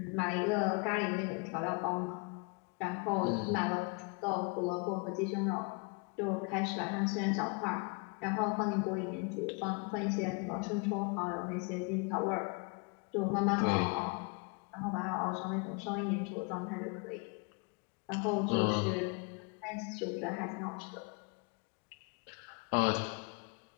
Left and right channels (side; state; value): right; quieter; 32.8 dB